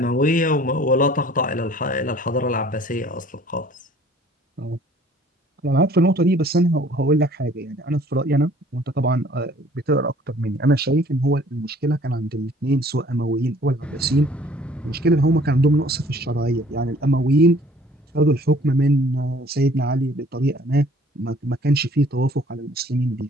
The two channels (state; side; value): normal; both; correlation 0.55